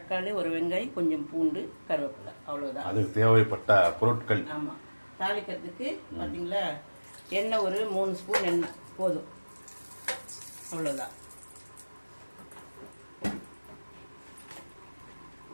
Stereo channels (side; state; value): both; inverted; correlation -1.00